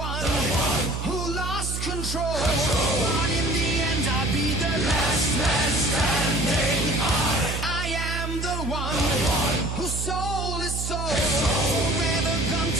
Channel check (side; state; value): right; noise; hum, 4 dB below the sound